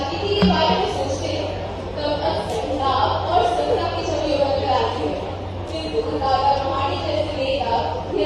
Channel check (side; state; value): both; identical; correlation 1.00